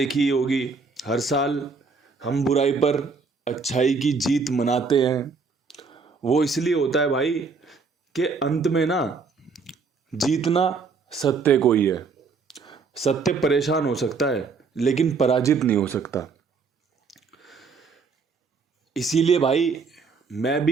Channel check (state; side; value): quieter; left; 4.8 dB